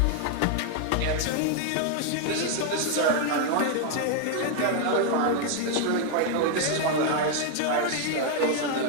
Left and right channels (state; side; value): different; both; correlation 0.00